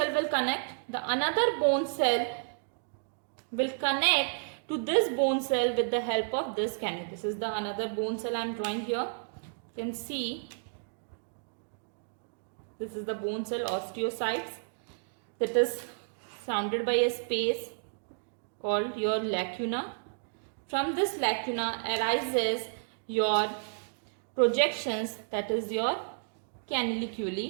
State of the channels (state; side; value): silent; left; digital silence